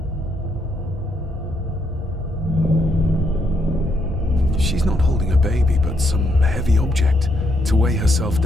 She's not holding a baby, but some heavy object to weigh herself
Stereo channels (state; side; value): normal; both; correlation 0.75